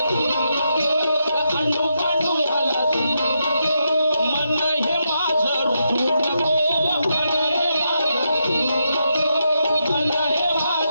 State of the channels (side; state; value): both; inverted; correlation -0.82